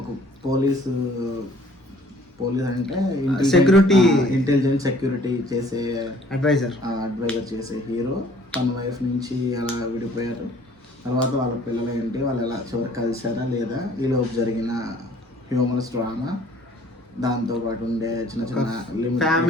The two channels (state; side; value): normal; both; correlation 0.56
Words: పోలీస్ అంటే ఇంటెలిజెంట్ సెక్యూరిటీ చేసే అడ్వైజర్ చేసే హీరో తన వైఫ్ నుంచి అలా విడిపోయారు. తర్వాత వాళ్ళ పిల్లలు ఏంటి, వాళ్ళు ఎలా చివరికి కలిసారా లేదా, ఈలోపు జరిగిన హ్యూమరస్ డ్రామా, దాంతోపాటు ఉండే చిన్న చిన్న